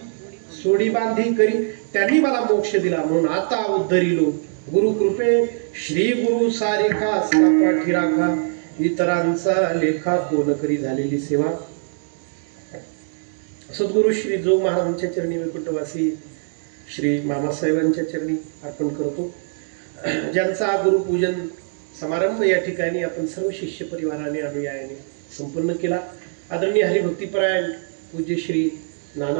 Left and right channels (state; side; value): silent; left; digital silence